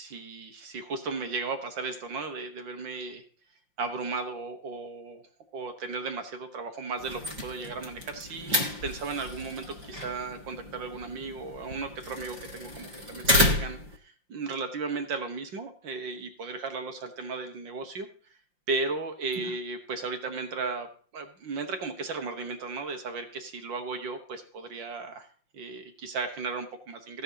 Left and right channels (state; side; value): late; left; 5.7 ms